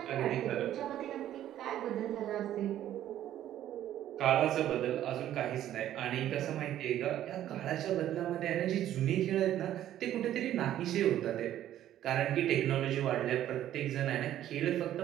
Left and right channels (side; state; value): left; quieter; 12.1 dB